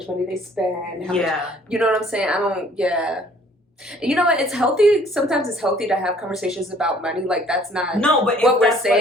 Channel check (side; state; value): both; normal; correlation 0.58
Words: money they spend. How much, you know what I'm saying? I don't. Yeah. You know what? It's healthy. Sometimes it's healthy to have conversations about money. Like that's not what we're